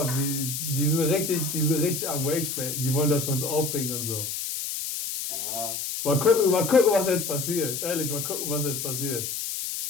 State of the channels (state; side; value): noise; left; hiss, 4 dB below the sound